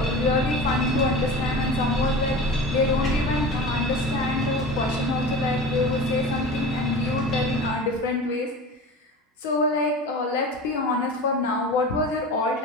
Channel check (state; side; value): normal; both; correlation 0.34